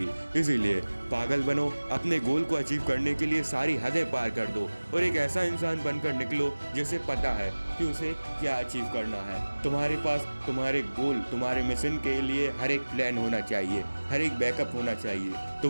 इसीलिए पागल बनो, अपने गोल को अचीव करने के लिए सारी हदें पार कर दो और एक ऐसा इंसान बनकर निकलो जिसे पता है कि उसे क्या अचीव करना है। तुम्हारे पास तुम्हारे गोल, तुम्हारे मिशन के लिए हर एक प्लान होना चाहिए, हर एक बैकअप होना चाहिए।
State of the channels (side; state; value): both; inverted; correlation -1.00